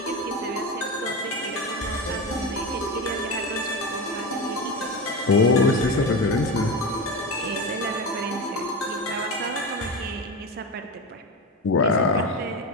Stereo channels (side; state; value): both; normal; correlation 0.20